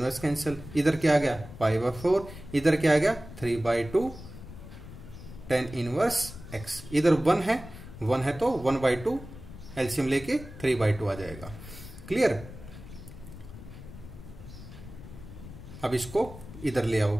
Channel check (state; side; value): noise; left; rumble, 14 dB below the sound